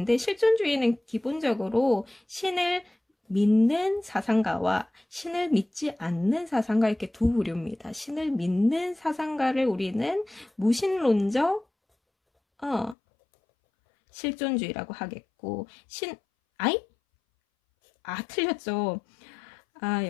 실존주의는 기본적으로 신을 믿는 사상가와 신을 믿지 않는 사상가, 이렇게 두 부류입니다. 신을 믿는 사상가를 우리는 무신론적 실존주의라고 하겠고, 틀렸죠.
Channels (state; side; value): drops out; right; at 13.0 s